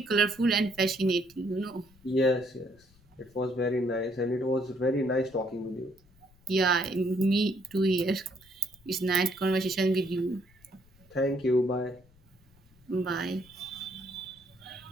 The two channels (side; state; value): left; noise; rumble, 29 dB below the sound